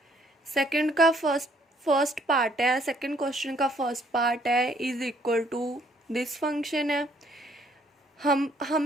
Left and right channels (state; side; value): normal; both; correlation 0.65